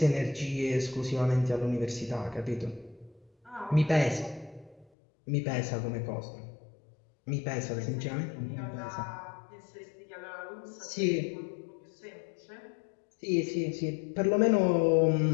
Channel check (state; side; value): drops out; right; at 4.9 s